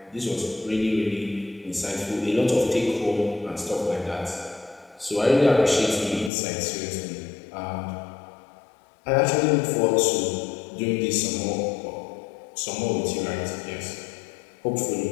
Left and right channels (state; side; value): drops out; right; at 6.3 s